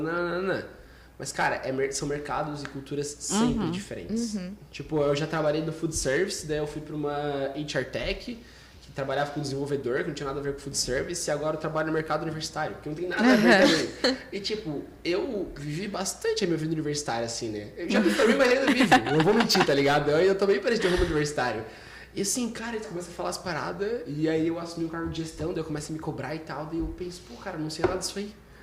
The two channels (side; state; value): both; identical; correlation 1.00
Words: Mas, cara, são mercados e culturas sempre diferentes. Tipo, eu já trabalhei no food service, daí eu fui pra uma HR Tech, que trabalhava com desenvolvedor, que não tinha nada a ver com food service, e agora eu trabalho no mercado universitário, que não tem nada a ver também. E, tipo, eu vivi bastante a minha vida universitária, assim, né? Eu já me formei, mas ainda vivo. Não vou mentir, tá ligado? Eu também parei de rumo universitário. E assim, cara, tu começa a falar as paradas, e aí eu assumi um cargo de gestão, daí eu começo a me cobrar e tal, daí eu penso, pô, cara, não sei nada disso aí.